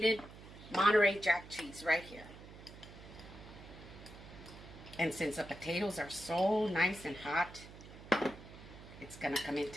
Monterey Jack cheese right here. And since the potatoes are so nice and hot, it's going to come in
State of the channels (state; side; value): noise; right; hum, 16 dB below the sound